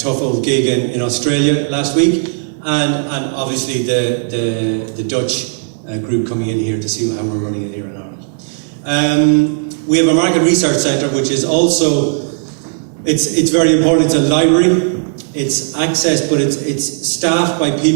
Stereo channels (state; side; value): silent; left; digital silence